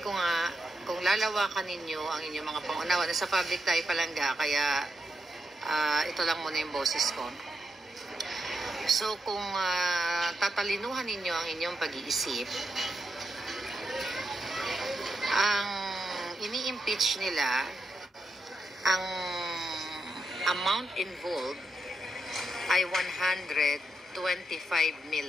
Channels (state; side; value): normal; both; correlation 0.84